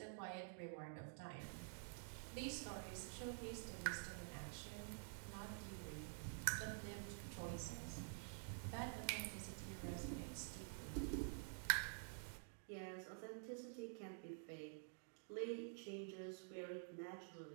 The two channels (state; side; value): silent; left; digital silence